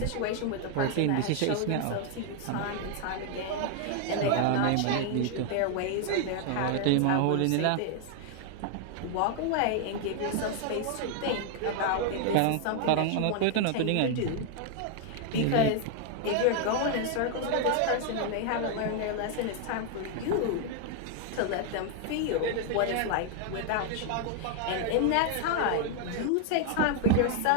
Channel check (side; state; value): both; different; correlation 0.00